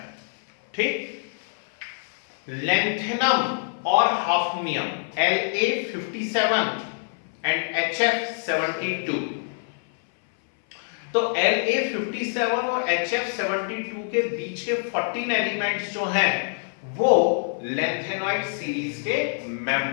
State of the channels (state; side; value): silent; right; 62 dB below the other